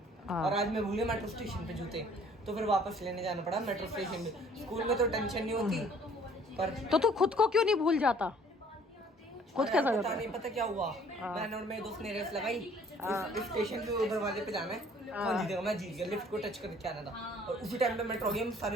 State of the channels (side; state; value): both; normal; correlation 0.56